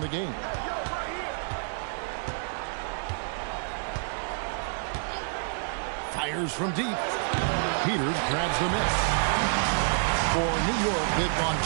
the game. Fires from deep. Peters grabs the miss. For New York, they've gone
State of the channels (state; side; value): silent; left; 59 dB below the other